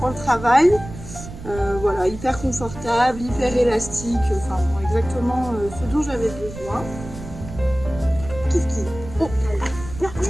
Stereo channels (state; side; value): noise; right; rumble, 13 dB below the sound